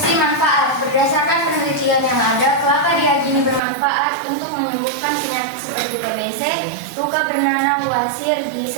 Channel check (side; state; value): left; drops out; at 3.6 s